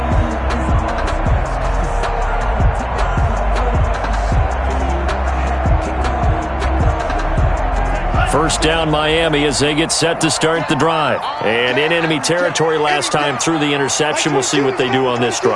First down Miami as they get set to start the drive. And in enemy territory last time through the interception. We'll see what they do on this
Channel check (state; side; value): identical; both; correlation 1.00